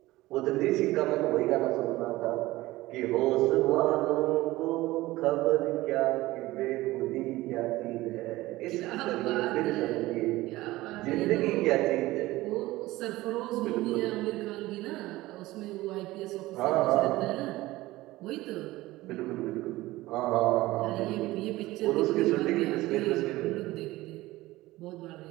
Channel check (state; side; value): quieter; left; 18.2 dB